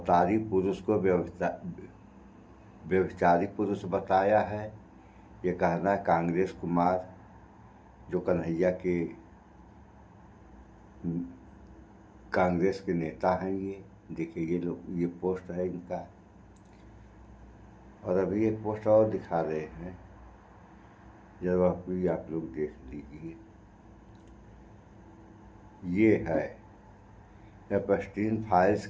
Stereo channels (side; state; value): both; identical; correlation 1.00